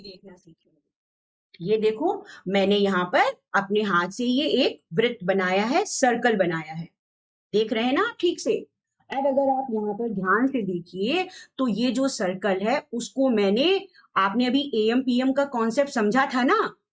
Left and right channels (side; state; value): both; identical; correlation 1.00